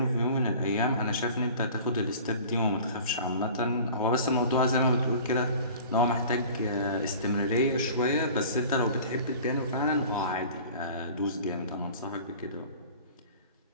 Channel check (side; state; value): both; inverted; correlation -0.43